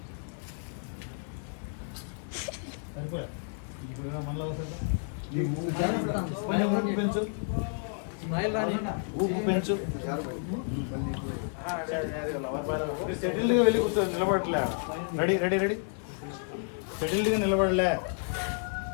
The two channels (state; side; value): silent; right; 57 dB below the other